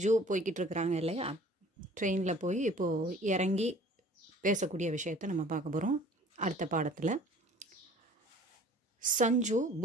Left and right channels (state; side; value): normal; both; correlation 0.50